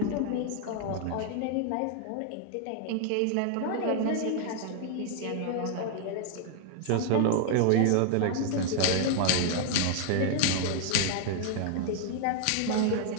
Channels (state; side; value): different; both; correlation 0.00